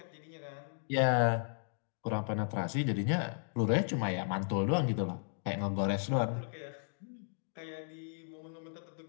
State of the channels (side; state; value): right; silent; digital silence